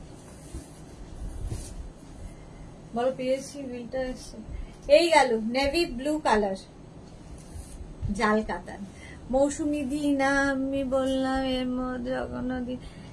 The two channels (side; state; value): both; identical; correlation 1.00